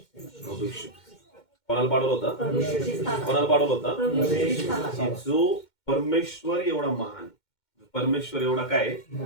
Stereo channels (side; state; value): right; late; 2.1 ms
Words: प्रभू येशू. कोणाला पाठवलं होतं? प्रभू येशूची स्थापना. कोणाला पाठवलं होतं? प्रभू येशूची स्थापना. की जो परमेश्वर एवढा महान, परमेश्वर एवढा काय,